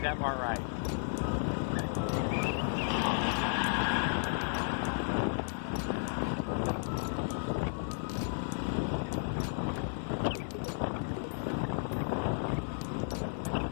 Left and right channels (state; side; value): silent; right; 55 dB below the other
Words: that part right.